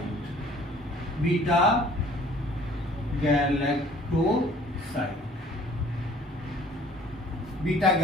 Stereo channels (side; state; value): both; normal; correlation 0.54